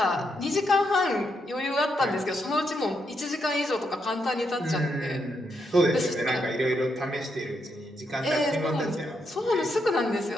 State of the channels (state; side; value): normal; both; correlation 0.80